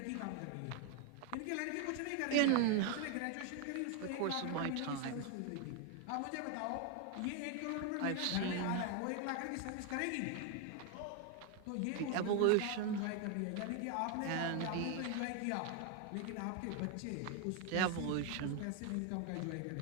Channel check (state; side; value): different; both; correlation 0.01